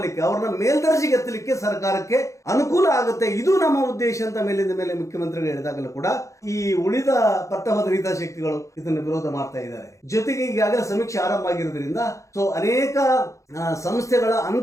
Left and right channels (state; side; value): late; right; 0.15 ms